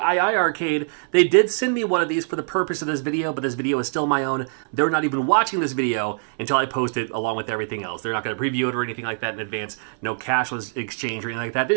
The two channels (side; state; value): left; silent; 63 dB below the other